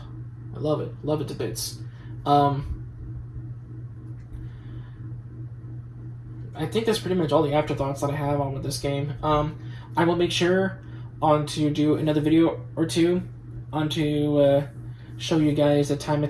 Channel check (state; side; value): identical; both; correlation 1.00